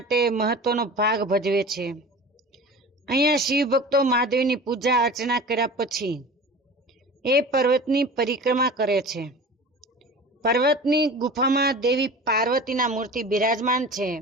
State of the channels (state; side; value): normal; both; correlation 0.37